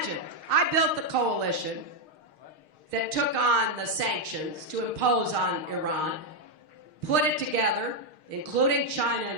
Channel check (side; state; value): left; late; 6.5 ms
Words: I built the coalition that took on the sanctions to impose on Iran, put it together, including China